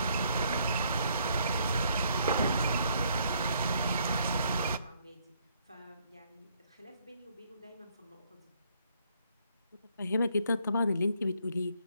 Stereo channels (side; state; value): both; inverted; correlation -0.68